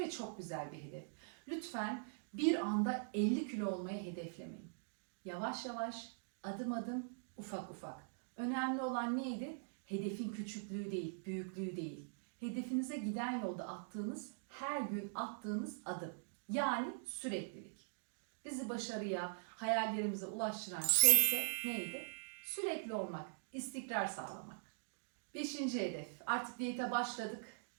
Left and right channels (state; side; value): silent; left; digital silence